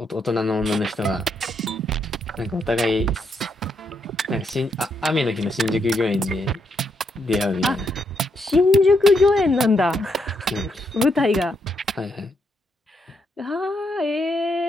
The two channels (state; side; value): normal; both; correlation 0.78